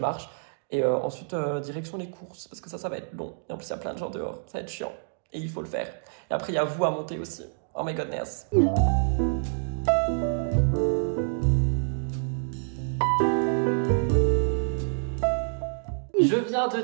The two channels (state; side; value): silent; left; digital silence